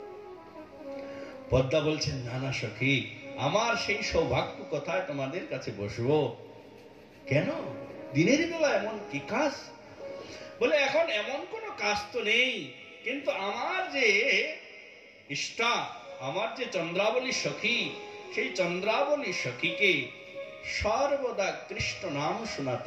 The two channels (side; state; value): both; identical; correlation 1.00